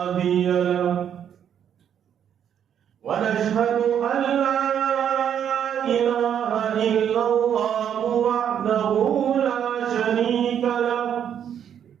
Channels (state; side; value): quieter; left; 9.0 dB